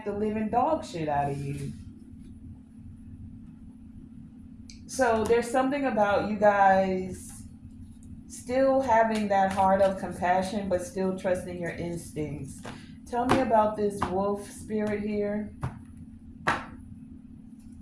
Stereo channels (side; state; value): both; identical; correlation 1.00